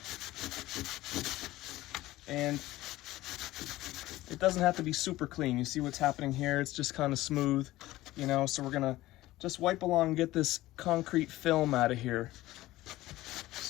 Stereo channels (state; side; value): quieter; right; 16.9 dB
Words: and it doesn't have to be super clean. You see what's happening here? It's just kind of smooth, you know, so we're gonna just wipe along and get this concrete film out of here.